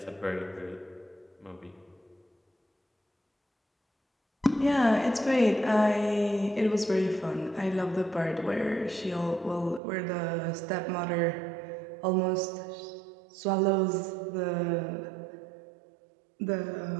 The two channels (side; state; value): left; drops out; at 9.8 s